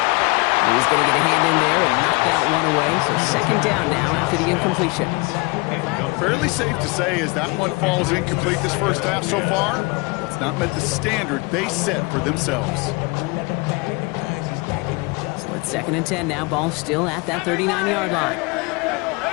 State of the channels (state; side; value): quieter; right; 27.0 dB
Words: And he's going to get a hand in there and knock that one away. So second down now after the incompletion. Fairly safe to say as that one falls incomplete this first half so far, it's not met the standard they set for themselves. So it's second and 10 now. Ball still at that 39-yard line.